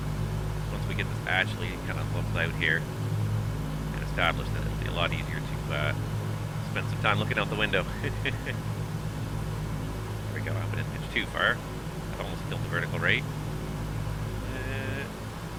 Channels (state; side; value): identical; both; correlation 1.00